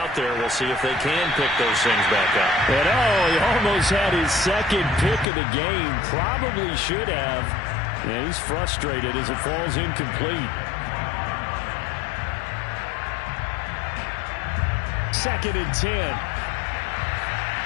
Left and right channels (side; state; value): right; drops out; at 5.2 s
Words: there. We'll see if they can pick those things back up. And he almost had his second pick of the game. Probably should have. And he's frustrated as it falls incomplete. Second and 10.